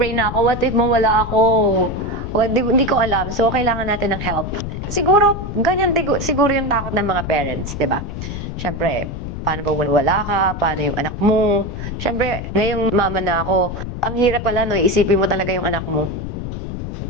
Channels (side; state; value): left; noise; rumble, 6 dB below the sound